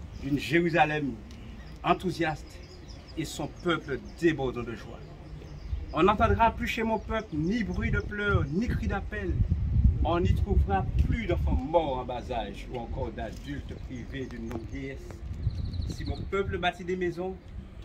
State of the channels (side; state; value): both; identical; correlation 1.00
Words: Une Jérusalem enthousiaste et son peuple débordant de joie. On n'entendra plus chez mon peuple ni bruit de pleurs, ni cri d'appel. On n'y trouvera plus d'enfants morts en bas âge ou encore d'adultes privés d'une longue vieillesse. Si mon peuple bâtit des maisons,